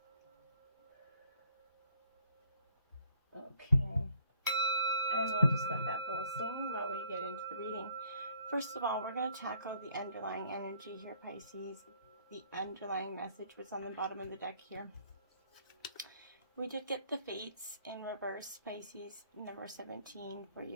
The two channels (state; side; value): inverted; both; correlation -0.62